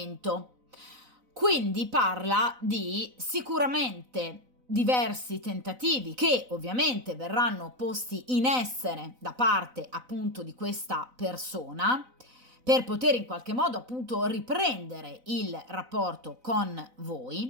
Quindi parla di sicuramente diversi tentativi che ovviamente verranno posti in essere da parte appunto di questa persona per poter in qualche modo appunto riprendere il rapporto con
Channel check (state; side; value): late; left; 4.0 ms